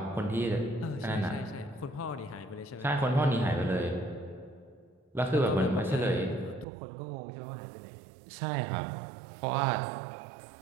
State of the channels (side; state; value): left; drops out; at 6.7 s